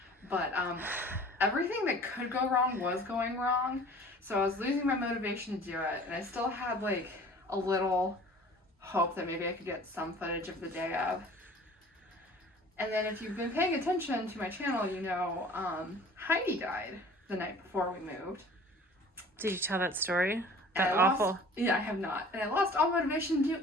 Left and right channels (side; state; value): both; normal; correlation 0.47